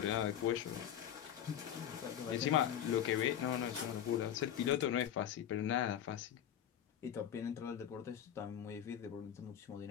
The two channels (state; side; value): quieter; right; 10.0 dB